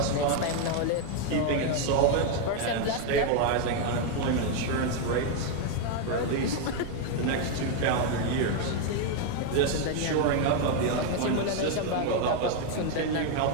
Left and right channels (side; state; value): both; different; correlation 0.01